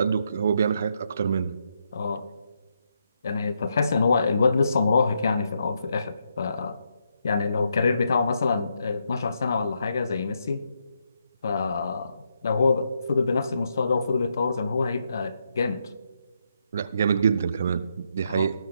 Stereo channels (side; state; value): both; inverted; correlation -0.80